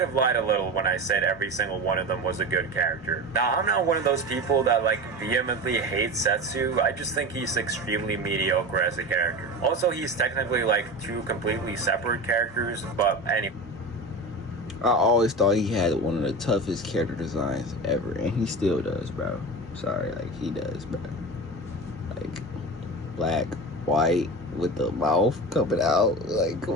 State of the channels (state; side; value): normal; both; correlation 0.28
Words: have lied a little when I said every single one of them was a good character. Now, I'm not one of those people that like vehemently hate Setsu. I just think he's extremely mediocre as a character. Also, he's technically like two completely separate characters, but anyway. I always thought he had one of the toughest character designs ever, and he still does, bro. Sorry, like, he does, bro. Like, black, white, with the mouth coming out. Like, come